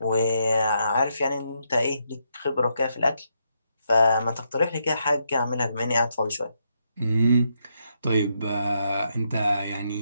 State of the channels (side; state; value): both; inverted; correlation -0.79